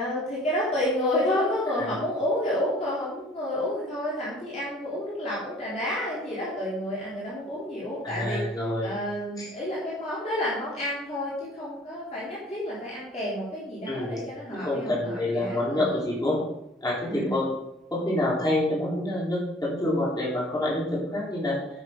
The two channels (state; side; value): normal; both; correlation 0.52